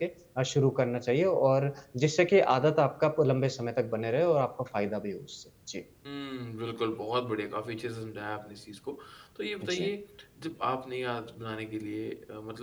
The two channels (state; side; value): identical; both; correlation 1.00